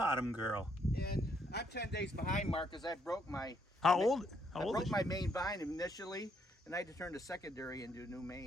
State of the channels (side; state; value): both; normal; correlation 0.72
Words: girl. And I'm 10 days behind, Mark, because I broke my... How old I broke is my main vine initially, and I had to turn the secondary into a new